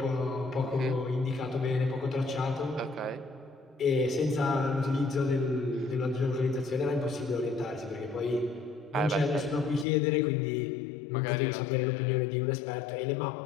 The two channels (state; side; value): drops out; right; at 9.9 s